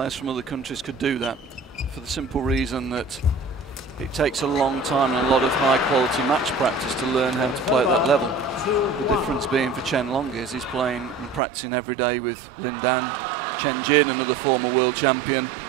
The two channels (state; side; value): drops out; left; at 11.4 s